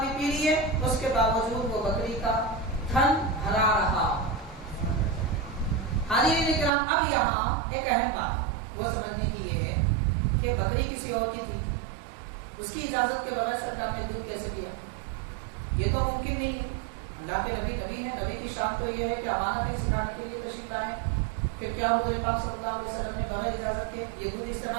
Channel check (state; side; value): drops out; left; at 6.7 s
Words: بھی پی لیے، اس کے باوجود وہ بکری کا تھن بھرا رہا۔ حاضرین کرام، اب یہاں ایک اہم بات وہ سمجھنے کی یہ ہے کہ بکری کسی اور کی تھی، اس کی اجازت کے بغیر سرکار نے دودھ کیسے دیا؟ یہ تو ممکن نہیں ہے۔ اللہ کے نبی نبی ہیں، نبی کی شان تو یہ ہے کہ امانتیں سکھانے کے لیے تشریف لائیں، پھر کیا حضور پاک صلی اللہ علیہ وسلم نے بغیر اجازت کے یہ دودھ